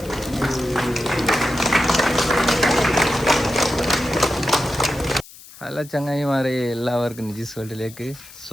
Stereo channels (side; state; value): left; noise; hiss, 19 dB below the sound